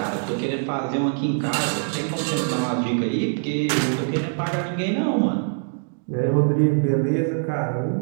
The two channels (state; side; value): silent; left; digital silence